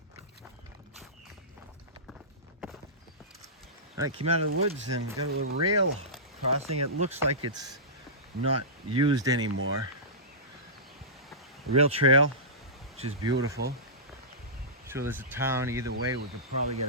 All right, came out of the woods and got a little rail crossing. It looks like it's not used anymore. Rail trail, which is beautiful. So there's a town either way. We could probably get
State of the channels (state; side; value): normal; both; correlation -0.19